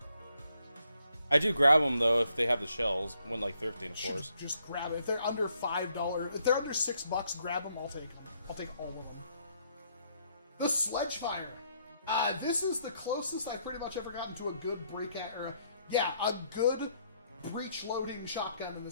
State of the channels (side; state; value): both; inverted; correlation -0.72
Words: I do grab them though if they have the shells, when like thrifting, of course. Just grab it. If they're under $5, if they're under $6, grab them. I'll take them. I'll take all of them. The Sledgefire. This is the closest I've pretty much ever gotten to a good a good breach loading shotgun in